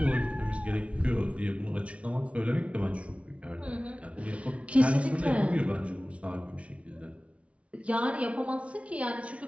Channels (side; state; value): left; late; 0.063 ms